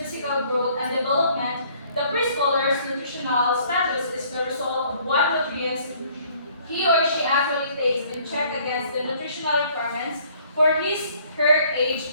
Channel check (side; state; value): both; inverted; correlation -0.59